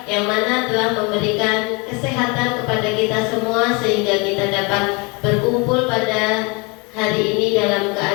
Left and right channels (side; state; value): right; quieter; 29.4 dB